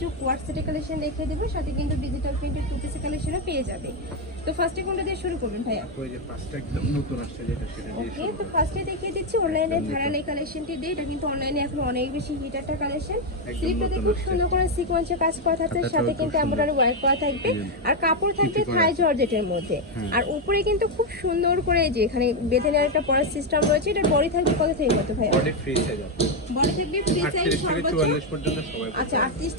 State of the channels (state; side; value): normal; both; correlation 0.04